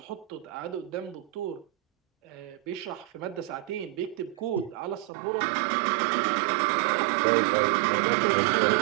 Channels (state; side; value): drops out; left; at 5.1 s